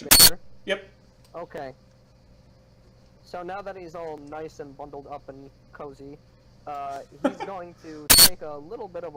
Major? Yep. Okay. So now that he's all nice and bundled up and cozy, he's going to take a little bit of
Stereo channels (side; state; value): both; identical; correlation 1.00